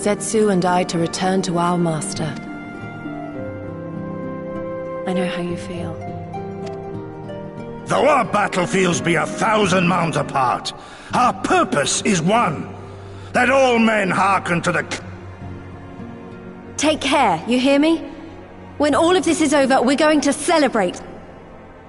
and I to return to our master. I know how you feel. Though our battlefields be 1,000 mounds apart, our purpose is one. That all men hearken to the... Take care, you hear me? When all of this is over, we're going to celebrate.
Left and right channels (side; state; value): both; identical; correlation 1.00